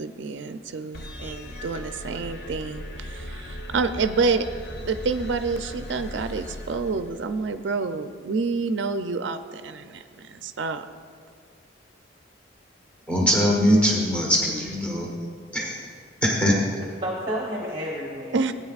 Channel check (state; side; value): normal; both; correlation 0.41